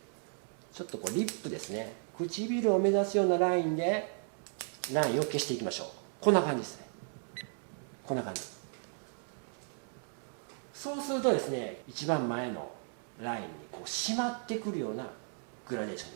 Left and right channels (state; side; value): silent; left; 54 dB below the other